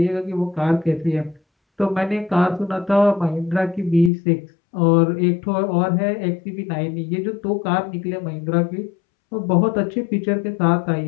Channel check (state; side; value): drops out; right; at 4.1 s